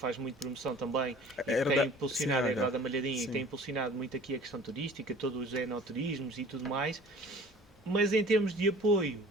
muito promoção também e que tem impulsionado, a Herdade da Malhadinha, e que tem impulsionado muito aqui a questão turística, todos os enoturismos e tudo mais. Mas em termos de apoio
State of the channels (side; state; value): both; normal; correlation 0.47